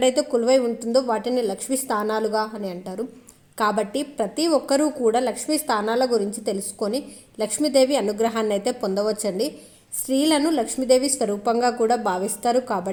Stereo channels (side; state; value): both; identical; correlation 1.00